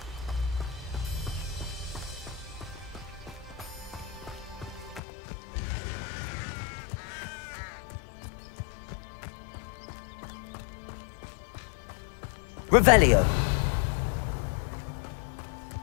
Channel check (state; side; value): drops out; right; at 5.0 s